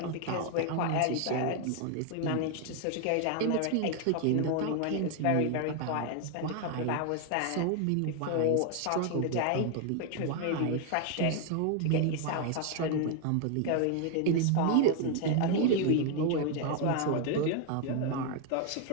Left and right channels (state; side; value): different; both; correlation 0.01